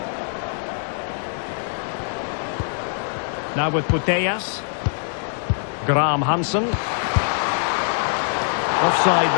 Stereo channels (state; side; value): silent; right; digital silence